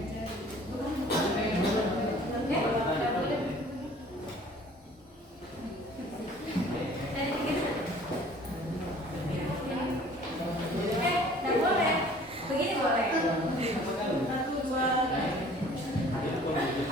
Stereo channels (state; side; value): normal; both; correlation 0.51